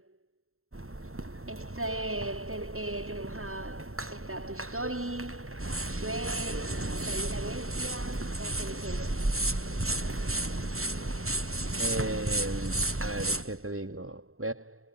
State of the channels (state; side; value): late; left; 0.62 ms